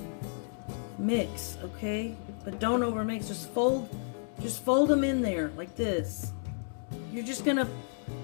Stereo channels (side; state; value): right; silent; digital silence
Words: mix, okay? But don't overmix, just fold them in there like this. You're just gonna